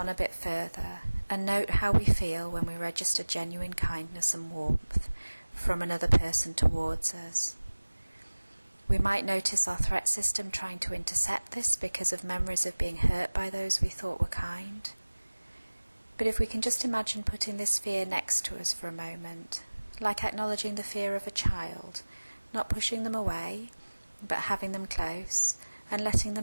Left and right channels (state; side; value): inverted; both; correlation -1.00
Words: a bit further and note how we feel when we register genuine kindness and warmth from another person towards us. We might notice our threat system trying to intercept this because of memories of being hurt by those we thought were kind. But if we can just imagine putting this fear next to us for a moment, like acknowledging the fear of a child, not pushing them away, but having them close, and letting